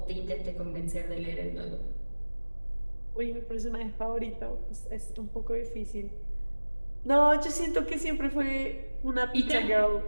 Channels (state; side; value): inverted; both; correlation -1.00